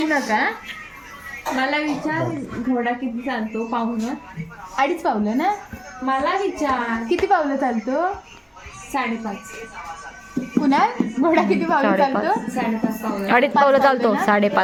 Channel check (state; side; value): identical; both; correlation 1.00